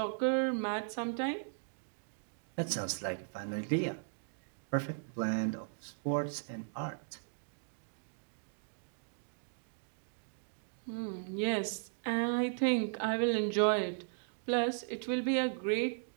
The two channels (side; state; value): left; silent; digital silence